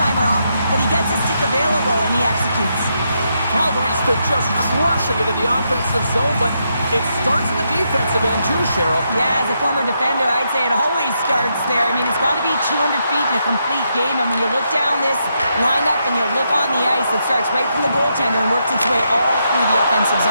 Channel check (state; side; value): inverted; both; correlation -0.80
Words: off, but he gets his stick available and he executes. Calgary's been just crushing it in the offensive zone, but It starts in the defensive end too, Cheryl. Yeah, as a former defender, I'd say it always starts there. I mean, it's got to be 200 feet in a complete game, and when you look down this lineup and you look on the ice, it starts right from the goaltender and works its way all through the offensive